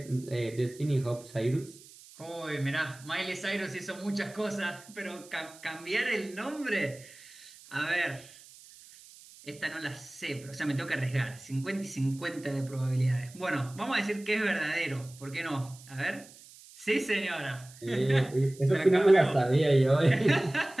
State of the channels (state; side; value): noise; right; hiss, 21 dB below the sound